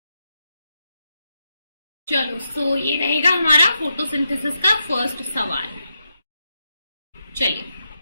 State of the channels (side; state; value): both; inverted; correlation -0.83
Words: चलो सो ये रहेगा हमारा फोटोसिंथेसिस का फर्स्ट सवाल। चलिए